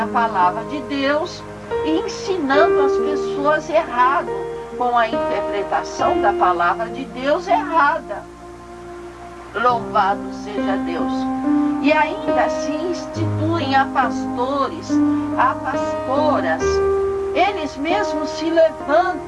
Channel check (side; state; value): both; identical; correlation 1.00